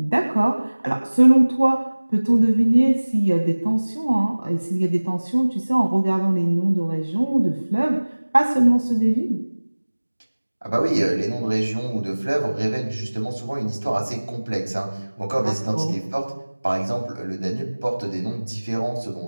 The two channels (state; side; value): inverted; both; correlation -1.00